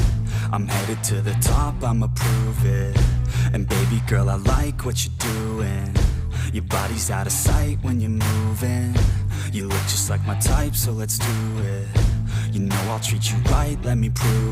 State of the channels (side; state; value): both; identical; correlation 1.00